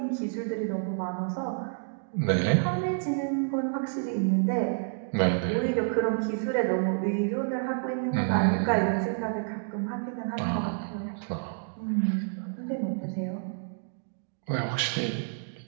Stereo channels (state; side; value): silent; left; digital silence